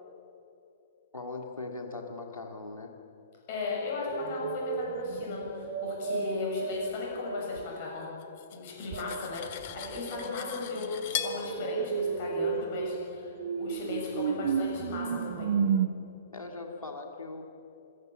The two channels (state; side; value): inverted; both; correlation -0.47